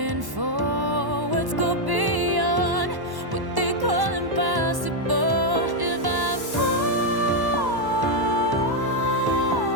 forwards, go beyond what they call impossible. If I fall,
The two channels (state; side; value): late; left; 1.1 ms